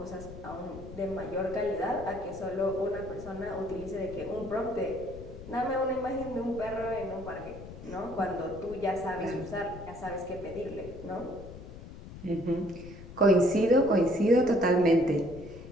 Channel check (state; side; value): noise; left; rumble, 14 dB below the sound